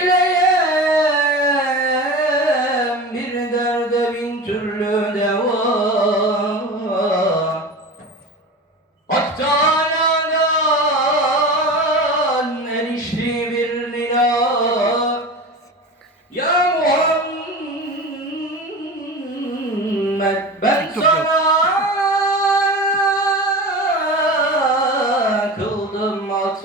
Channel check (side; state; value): both; normal; correlation 0.31